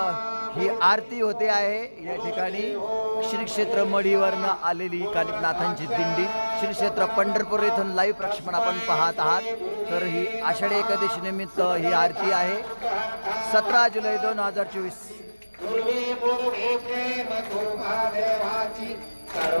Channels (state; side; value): inverted; both; correlation -1.00